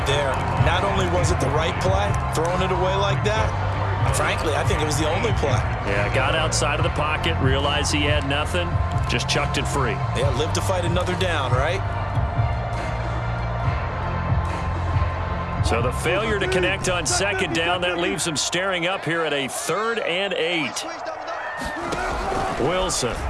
there. Not only was it the right play, throwing it away like that, frankly, I think it was the only play. Yeah, got outside of the pocket, realized he had nothing, just chucked it free. Yeah, live to fight another down, right? So the failure to connect on 2nd down, that leaves him staring up here at a 3rd and 8.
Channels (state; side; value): identical; both; correlation 1.00